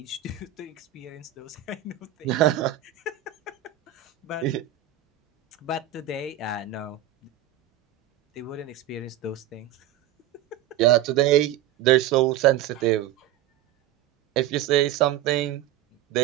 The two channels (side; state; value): left; quieter; 11.6 dB